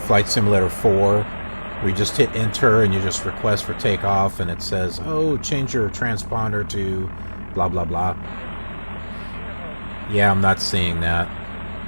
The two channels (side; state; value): both; inverted; correlation -1.00